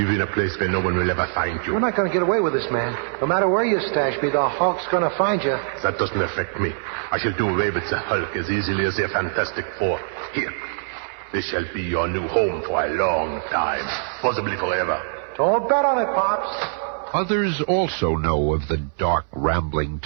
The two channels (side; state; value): left; silent; 61 dB below the other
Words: in a place where no one will ever find you. We're not going to get away with this, man. No matter where you stash me, the Hulk's going to find you. That doesn't affect me. I shall do away with the Hulk as easily as the Fantastic Four. Here. This shall be your new home for a long time, possibly forever. Don't bet on it, Pops. Others also know of the dark, rambling